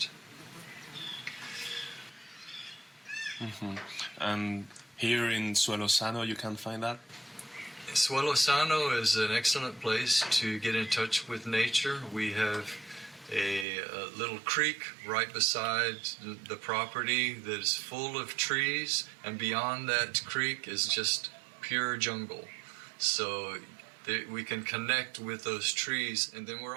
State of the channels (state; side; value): drops out; left; at 13.7 s